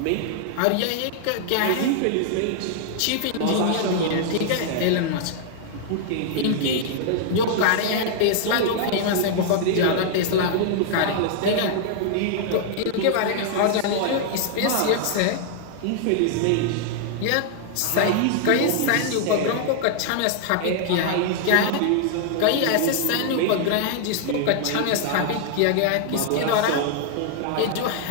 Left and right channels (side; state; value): both; different; correlation -0.01